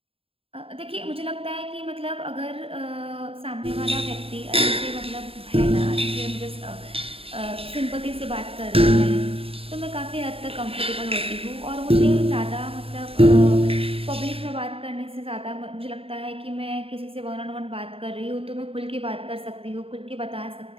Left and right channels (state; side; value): late; left; 0.27 ms